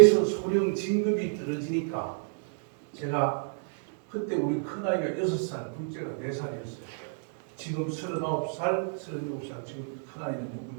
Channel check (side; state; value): left; silent; digital silence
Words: 소령 진급이 떨어지니까 제가 그때 우리 큰아이가 6살, 둘째가 4살이었어요. 지금 39살, 37살, 지금 큰아이는